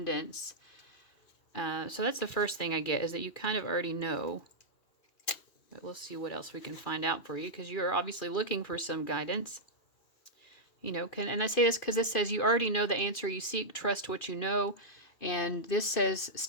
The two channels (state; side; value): late; right; 2.6 ms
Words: So that's the first thing I get, is that you kind of already know. But we'll see what else we can find out for you, because you are obviously looking for some guidance. You know, and I say this because this says you already know the answer you seek, trust what you know. And this says